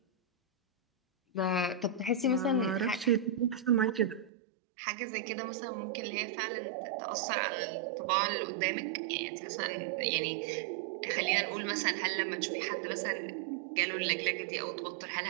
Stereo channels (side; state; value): left; drops out; at 4.3 s